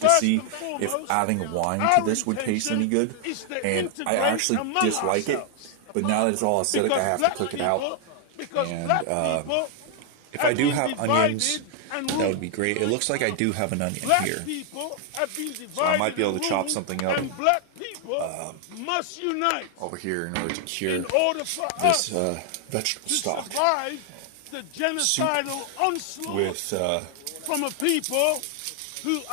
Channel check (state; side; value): different; both; correlation 0.00